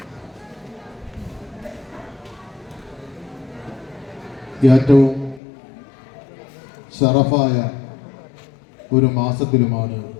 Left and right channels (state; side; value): drops out; right; at 5.4 s